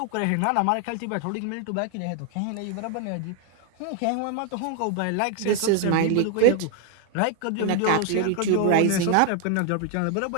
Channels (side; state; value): both; different; correlation 0.00